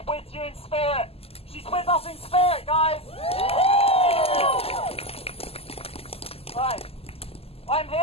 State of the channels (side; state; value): right; late; 0.29 ms